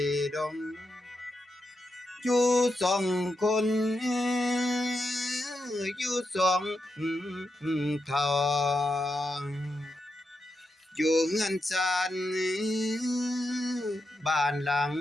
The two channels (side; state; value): both; normal; correlation 0.86